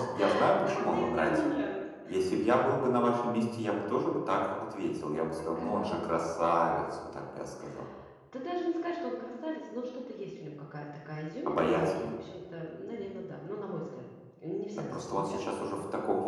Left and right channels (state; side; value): identical; both; correlation 1.00